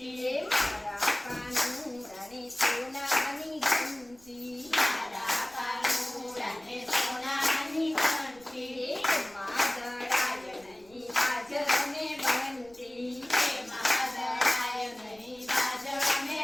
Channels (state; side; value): noise; right; rumble, 27 dB below the sound